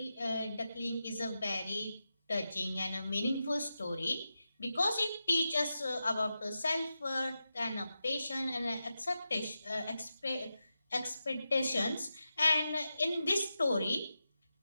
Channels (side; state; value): both; inverted; correlation -0.90